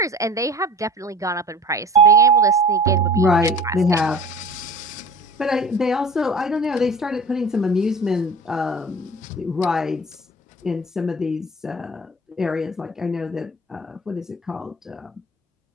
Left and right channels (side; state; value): both; normal; correlation 0.41